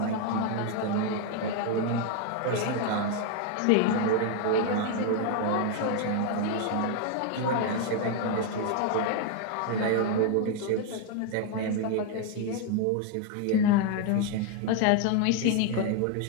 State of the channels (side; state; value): both; different; correlation 0.01